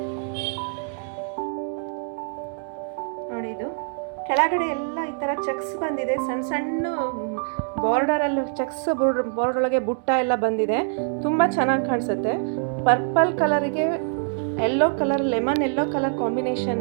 ನೋಡಿ, ಇದು ಕೆಳಗಡೆ ಎಲ್ಲ ಈ ಥರ ಚೆಕ್ಸ್ ಬಂದಿದೆ. ಸಣ್ಣ ಸಣ್ಣ ಬಾರ್ಡರಲ್ಲಿ ಚೆಕ್ಸ್ ಬಾರ್ಡರ್ ಒಳಗೆ ಬುಟ್ಟ ಎಲ್ಲ ಬಂದಿದೆ. ತುಂಬ ಚೆನ್ನಾಗಿ ಕಾಣಿಸುತ್ತೆ. ಪರ್ಪಲ್ ಕಲರಿಗೆ yellow colour, lemon yellow colour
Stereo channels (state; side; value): silent; left; 62 dB below the other